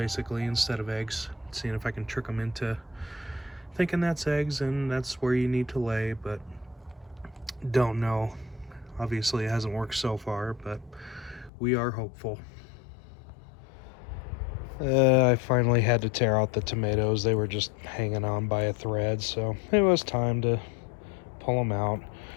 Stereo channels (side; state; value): right; drops out; at 11.5 s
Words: instead of eggs, seeing if I can trick them into thinking that's eggs and that's where you need to lay, but don't know. Obviously it hasn't worked so far, but we are hopeful. I finally had to tear out the tomatoes. They were just hanging on by a thread, so it was time to pull them out.